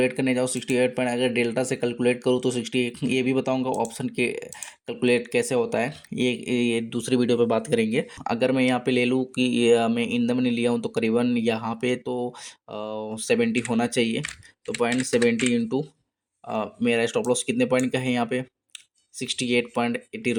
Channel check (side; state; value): both; identical; correlation 1.00